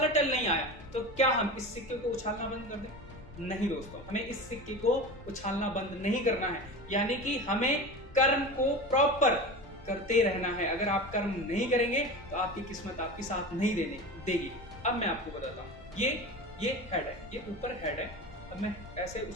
टेल नहीं आया, तो क्या हम इस सिक्के को उछालना बंद कर दें? नहीं दोस्तों, हमें इस सिक्के को उछालना बंद नहीं करना है, यानी कि हमें कर्म को प्रॉपर करते रहना है। अगर आप कर्म नहीं करेंगे तो आपकी किस्मत आपकी साथ नहीं देगी। अब मैं आपको बताता हूँ, ये हेड है, ये ऊपर हेड है। अब मैं ऐसे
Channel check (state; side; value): normal; both; correlation 0.30